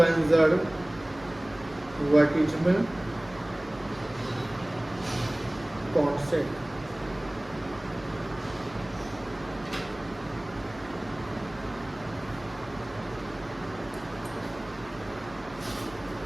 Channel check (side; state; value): right; noise; hum, 21 dB below the sound